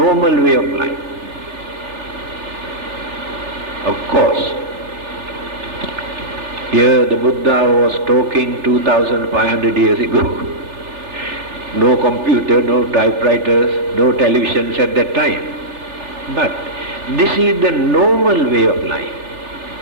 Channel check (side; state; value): left; late; 3.4 ms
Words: way of life. Of course, here the Buddha was talking 2500 years ago. No computer, no typewriters, no televisions at that time. But this is the normal way of life.